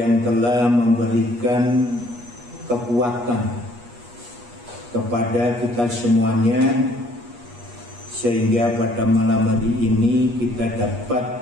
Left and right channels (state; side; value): late; left; 8.4 ms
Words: telah memberikan kekuatan kepada kita semuanya sehingga pada malam hari ini kita